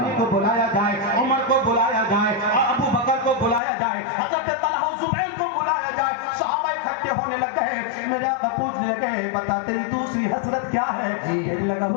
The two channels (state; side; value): drops out; right; at 3.6 s